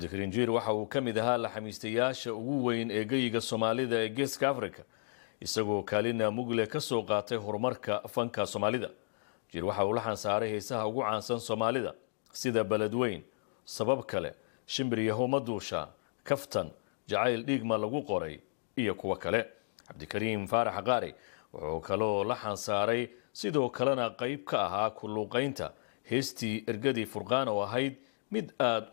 Jiir waxa uu kamid ahaa la xamiistayaasha ugu weyn ee geyga Soomaalida ee Geeska Afrika isagoo kaalina mugle ka soo qaatay horumarka fanka Soomaalida. Jiir waxa uu la xansaaray heesaha ugu caansan Soomaalida sida Baladweyn, Sabab kale, Shimbiriyaho Maduusha, Kaftan, Jacayl Dhiigma lagu qoray iyo kuwa kale. Cabdikariim Faarax Qaari wuxuu kaloo la xansaaray sidoo kalena qayb ka ahaa ku luuqaynta heestii Ergadii Furqaan oo ahayd mid aad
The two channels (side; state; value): right; silent; digital silence